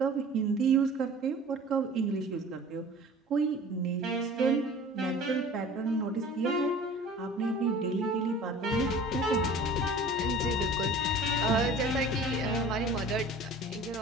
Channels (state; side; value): normal; both; correlation 0.43